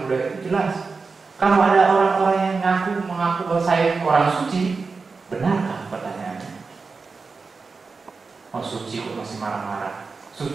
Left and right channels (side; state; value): left; quieter; 4.5 dB